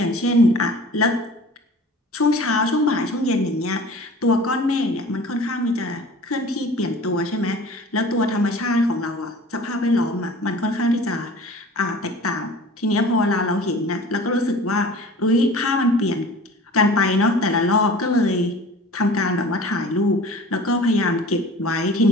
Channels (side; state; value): both; normal; correlation 0.42